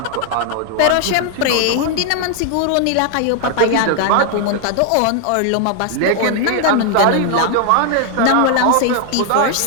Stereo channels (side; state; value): both; different; correlation 0.00